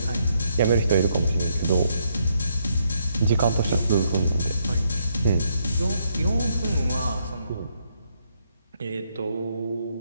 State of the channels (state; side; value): inverted; both; correlation -0.74